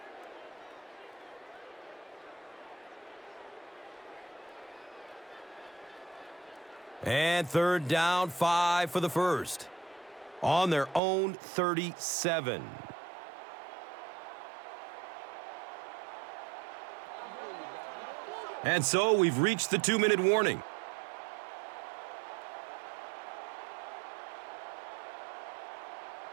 And third down, 5 for the first. On their own 37. And so we've reached the 2-minute warning.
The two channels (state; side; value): drops out; left; at 11.0 s